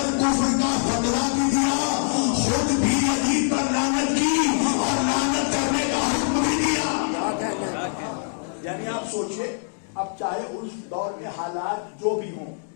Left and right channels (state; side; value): silent; right; digital silence